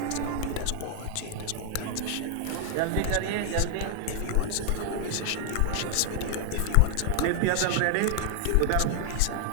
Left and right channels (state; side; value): different; both; correlation 0.00